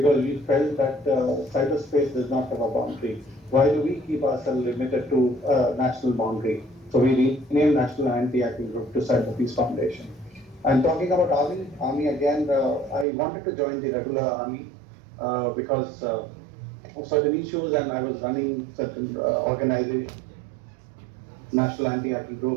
we felt that cyberspace does not have a boundary. Why do we keep ourselves limited to a national boundary? So we renamed National Anti-Hacking Group to CyberPeace Foundation. And talking about Army again, I wanted to join the regular Army because of certain issues, and I was running certain organizations, National Anti-Hacking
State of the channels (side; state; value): left; drops out; at 13.1 s